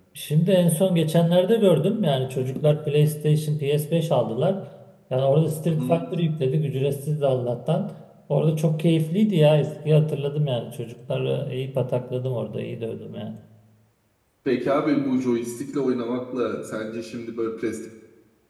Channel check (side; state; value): both; identical; correlation 1.00